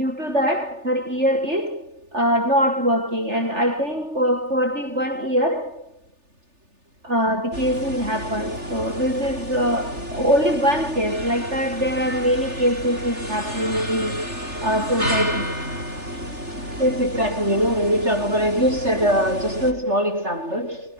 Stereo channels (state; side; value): late; left; 3.4 ms